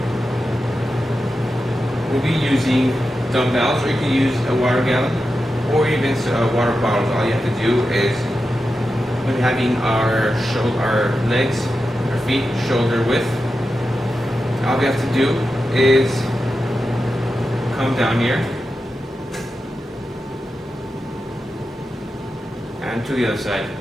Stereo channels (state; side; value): normal; both; correlation 0.90